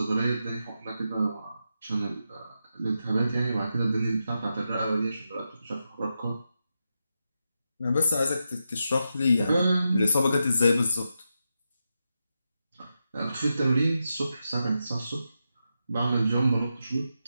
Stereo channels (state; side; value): inverted; both; correlation -0.87